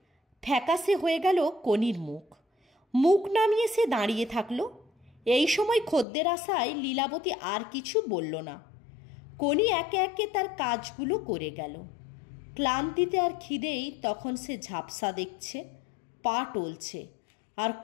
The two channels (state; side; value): drops out; right; at 6.1 s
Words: ফ্যাকাশে হয়ে গেল কোনির মুখ। মুখ নামিয়ে সে দাঁড়িয়ে থাকলো। এই সময় খদ্দের আসায় লীলাবতী আর কিছু বলল না। কোনি একে একে তার কাজগুলো করে গেল। ক্লান্তিতে আর খিদেই তখন সে ঝাপসা দেখছে, পা টলছে আর